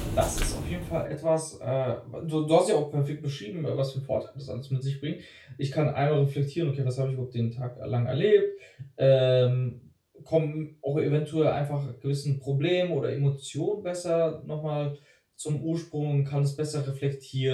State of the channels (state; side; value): identical; both; correlation 1.00